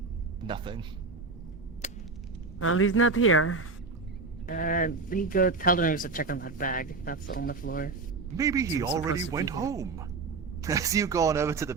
nothing. Well, he's not here. He go tell them to check on that bag. That's on the floor. Maybe he It's already supposed to be went here. home. As you go on over to the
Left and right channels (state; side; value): quieter; left; 4.1 dB